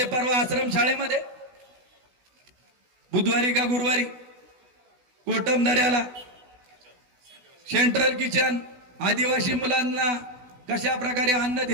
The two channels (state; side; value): late; left; 16 ms